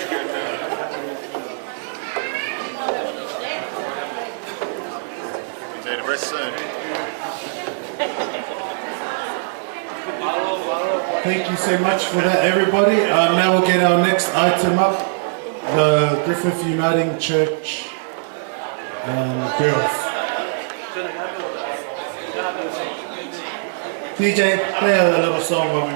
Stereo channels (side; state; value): left; silent; digital silence